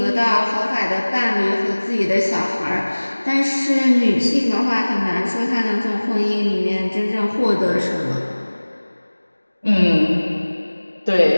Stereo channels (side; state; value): both; inverted; correlation -1.00